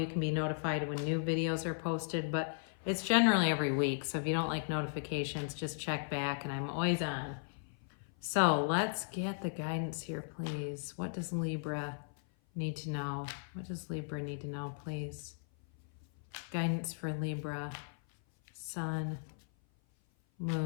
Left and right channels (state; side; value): silent; right; 54 dB below the other